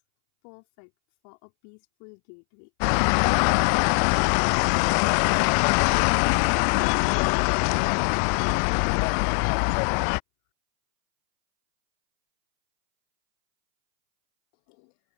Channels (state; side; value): silent; right; 64 dB below the other